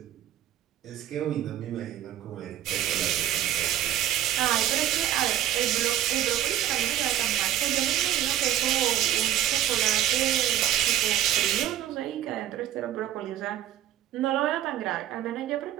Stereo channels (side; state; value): left; quieter; 12.1 dB